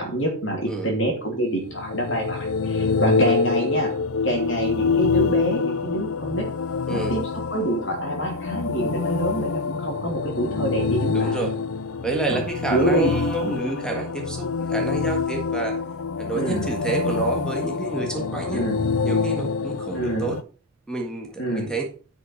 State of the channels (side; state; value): both; normal; correlation 0.04